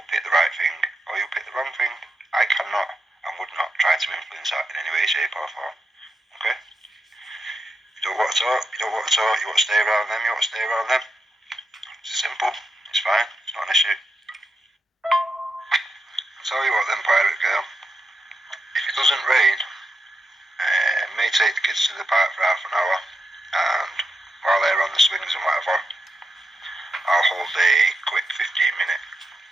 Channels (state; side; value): normal; both; correlation 0.85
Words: pick the right thing or you'll pick the wrong thing. I cannot and would not try to influence that in any way, shape or form. Okay? You don't want to talk, you want to stay around them, you want to stay around them. It's simple, it's fine, it's not an issue. I'll tell you what then, Pirate Girl. If it doesn't rain, may take the kids to the park for half an hour, and while they're on the swings and whatever, I'll hold a quick 15-minute